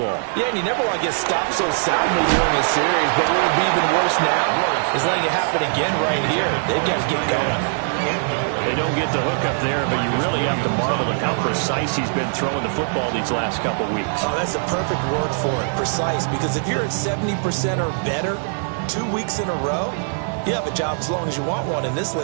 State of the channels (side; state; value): left; silent; digital silence